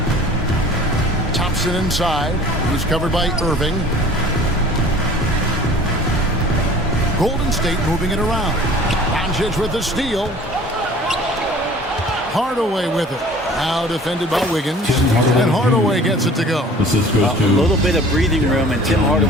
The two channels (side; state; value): both; normal; correlation 0.47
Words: Thompson inside. He's covered by Irving. Golden State moving it around. Doncic with the steal. Hardaway with it. Now defended by Wiggins, and Hardaway gets it to go. A little bit of breathing room, and Tim